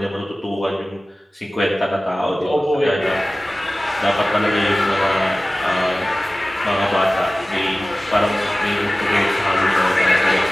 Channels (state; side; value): normal; both; correlation 0.97